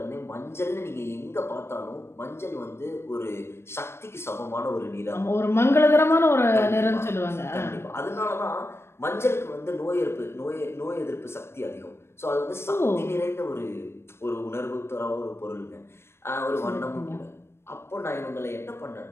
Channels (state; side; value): late; right; 0.12 ms